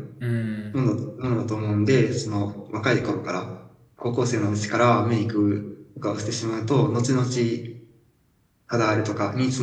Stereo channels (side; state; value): both; identical; correlation 1.00